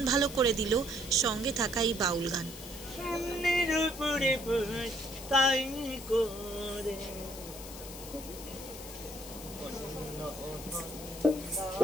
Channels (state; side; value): noise; left; hiss, 13 dB below the sound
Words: ভালো করে দিল সঙ্গে থাকা এই বাউল গান